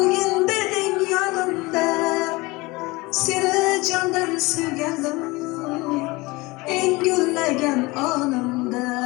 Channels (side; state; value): right; quieter; 22.9 dB